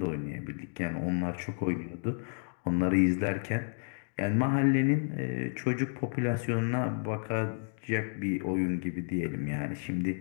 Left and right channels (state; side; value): silent; right; digital silence